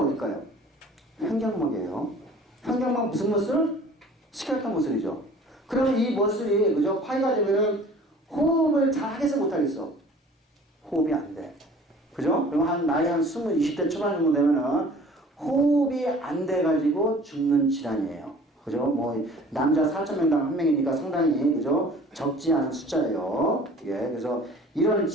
횡격막이에요. 횡격막 무슨 머슬? 스켈레톤 머슬이죠. 그러면 이 머슬이, 그죠? 파이가 되면은 호흡을 잘 하겠어, 못 하겠어? 호흡이 안 돼. 그죠? 그럼 나이 한 20대 초반 정도 되면은 호흡이 안 돼가지고 죽는 질환이에요. 그죠? 남자 4,000명당 1명이니까 상당히, 그죠? 적지 않은 숫자예요. 예, 그래서 이런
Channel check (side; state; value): both; normal; correlation 0.48